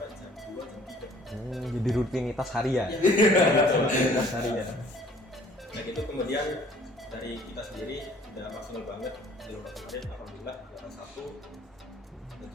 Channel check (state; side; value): normal; both; correlation 0.55